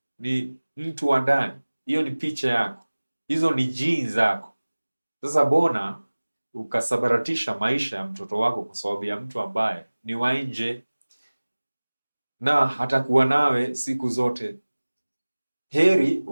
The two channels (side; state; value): both; inverted; correlation -1.00